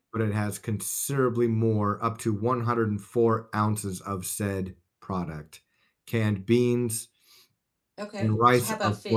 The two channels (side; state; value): both; identical; correlation 1.00